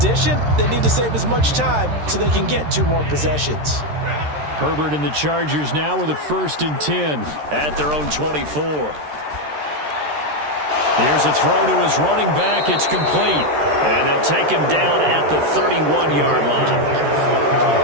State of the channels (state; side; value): late; left; 13 ms